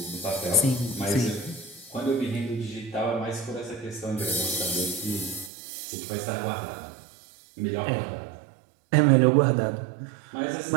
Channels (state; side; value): drops out; left; at 5.5 s